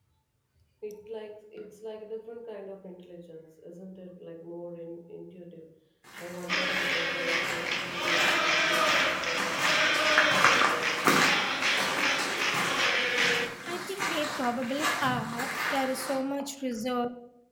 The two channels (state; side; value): identical; both; correlation 1.00